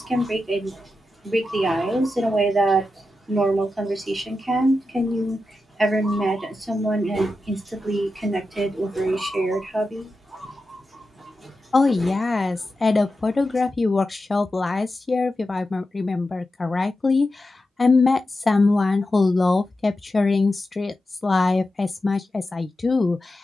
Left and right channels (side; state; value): both; normal; correlation 0.90